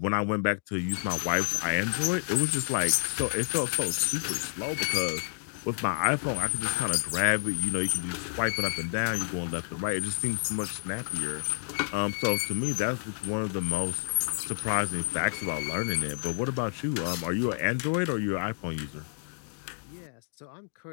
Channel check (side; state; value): right; silent; digital silence